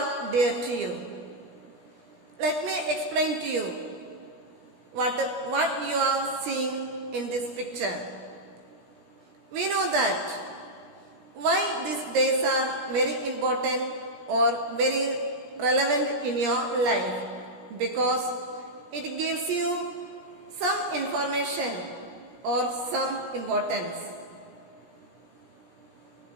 dear to you. Let me explain to you what you are seeing in this picture. We know that why these days are very important or very relevant in your life, because it gives you some information or some importance.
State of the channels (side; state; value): left; late; 16 ms